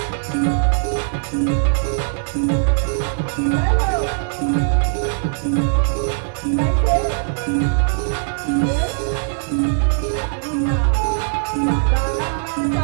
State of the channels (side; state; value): left; silent; 65 dB below the other